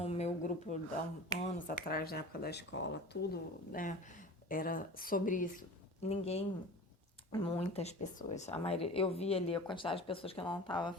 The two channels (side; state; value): both; normal; correlation 0.37